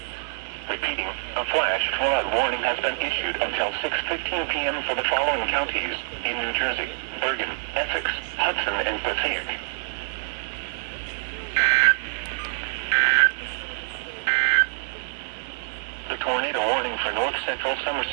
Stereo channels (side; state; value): left; silent; 61 dB below the other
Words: Repeating, a flash flood warning has been issued until 6:15 p.m. for the following counties in New Jersey: Bergen, Essex, Hudson, and Passaic. The tornado warning for north central